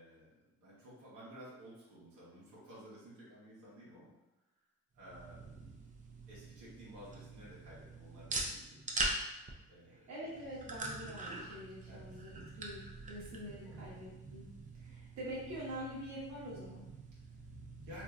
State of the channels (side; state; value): both; normal; correlation 0.12